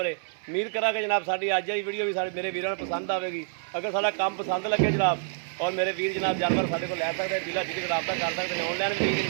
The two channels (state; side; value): silent; left; 60 dB below the other